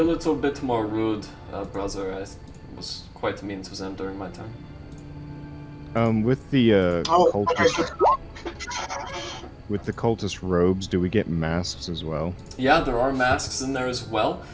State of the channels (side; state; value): both; identical; correlation 1.00